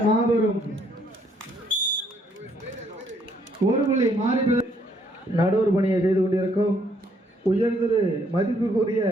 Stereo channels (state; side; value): normal; both; correlation 0.68